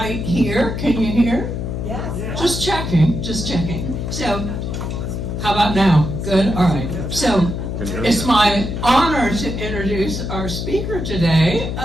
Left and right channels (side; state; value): left; noise; hum, 4 dB below the sound